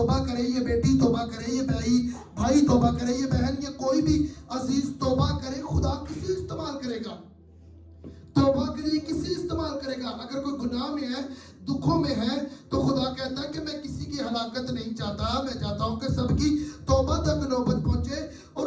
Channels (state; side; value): identical; both; correlation 1.00